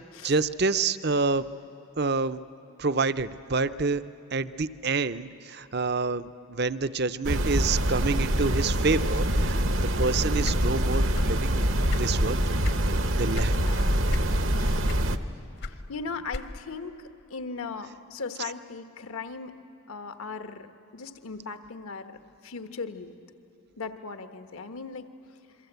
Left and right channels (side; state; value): both; normal; correlation 0.48